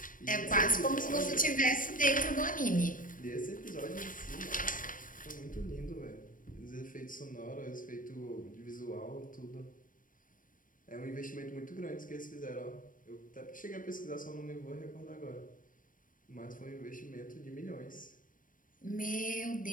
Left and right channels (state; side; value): late; right; 0.39 ms